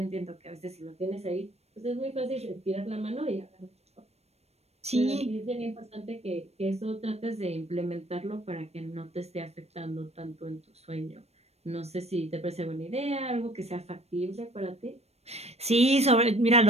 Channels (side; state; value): left; late; 0.31 ms